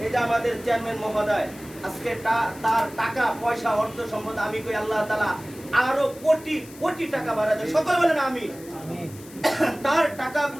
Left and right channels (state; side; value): noise; left; hiss, 20 dB below the sound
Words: এই যে আমাদের চেয়ারম্যান মহোদয় আজকে তার টাকা পয়সা অর্থ সম্পদ, আমি কই আল্লাহ তাআলা আরো কোটি কোটি টাকা বাড়ায় দেয়, সকলে বলেন আমিন। তার